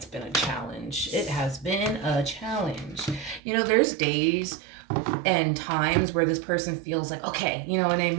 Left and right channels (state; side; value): drops out; left; at 3.4 s